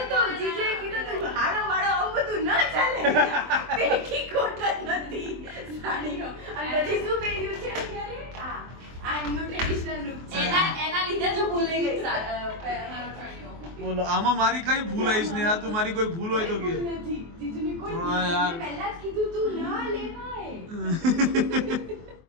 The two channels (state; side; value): late; left; 23 ms